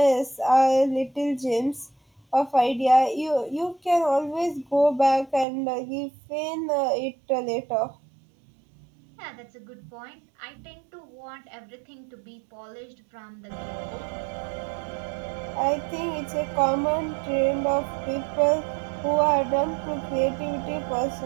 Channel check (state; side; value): drops out; left; at 5.5 s